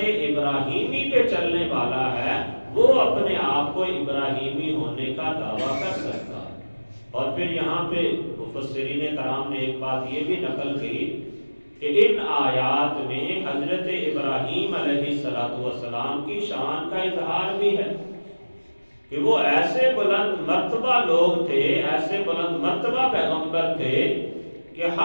پہ چلنے والا ہے وہ اپنے آپ کو ابراہیمی ہونے کا دعویٰ کر سکتا ہے۔ اور پھر یہاں پہ مفسرین کرام نے ایک بات یہ بھی نقل کی کہ ان آیات میں حضرت ابراہیم علیہ السلام کی شان کا اظہار بھی ہے کہ وہ ایسے بلند مرتبہ لوگ تھے، ایسے بلند مرتبہ پیغمبر تھے کہ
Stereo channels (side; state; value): both; inverted; correlation -1.00